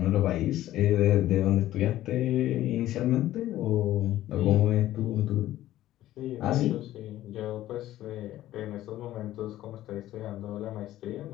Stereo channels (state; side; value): quieter; right; 14.2 dB